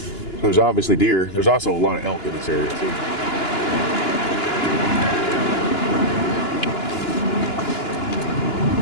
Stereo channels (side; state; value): right; late; 2.9 ms